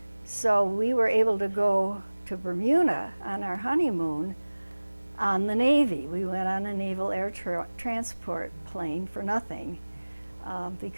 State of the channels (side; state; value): both; inverted; correlation -1.00